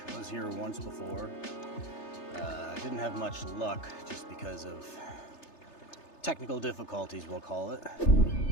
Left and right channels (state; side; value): late; right; 3.3 ms